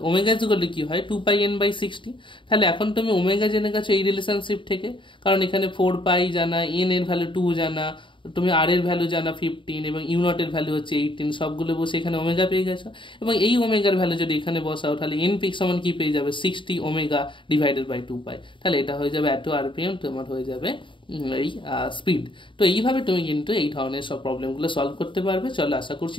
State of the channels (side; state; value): right; late; 0.24 ms